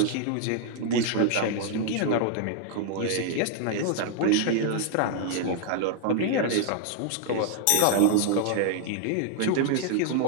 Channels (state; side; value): different; both; correlation -0.01